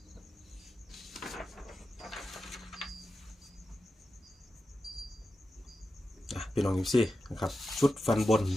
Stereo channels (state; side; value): normal; both; correlation 0.91